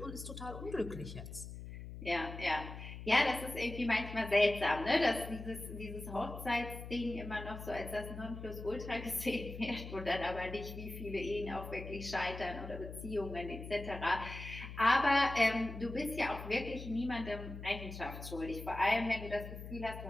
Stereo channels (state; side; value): noise; left; hum, 10 dB below the sound